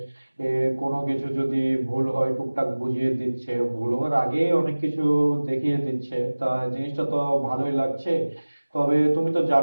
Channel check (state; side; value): inverted; both; correlation -1.00